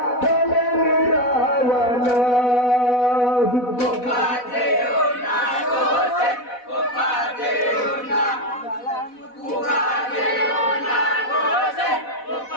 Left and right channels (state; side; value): late; right; 4.1 ms